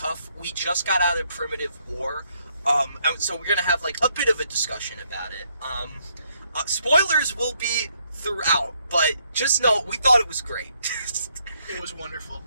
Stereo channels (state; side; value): inverted; both; correlation -0.73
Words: We just got out of Primitive War. So we're going to have, like, a bit of a discussion about it. Spoilers will be throughout, but just know, we thought it was great. It was wonderful.